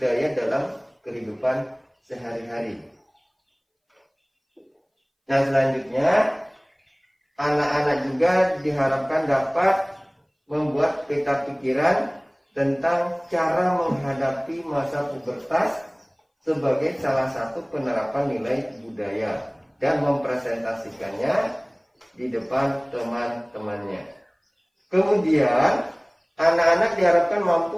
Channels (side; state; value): both; identical; correlation 1.00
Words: dalam kehidupan sehari-hari. Nah, selanjutnya anak-anak juga diharapkan dapat membuat peta pikiran tentang cara menghadapi masa pubertas sebagai salah satu penerapan nilai budaya dan mempresentasikannya di depan teman-temannya. Kemudian anak-anak diharapkan mampu